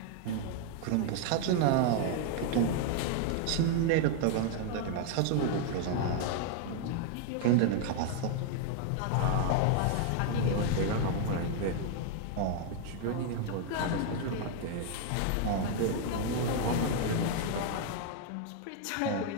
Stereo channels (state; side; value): different; both; correlation 0.00